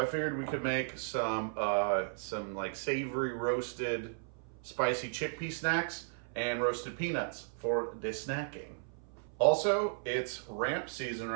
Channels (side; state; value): left; silent; 54 dB below the other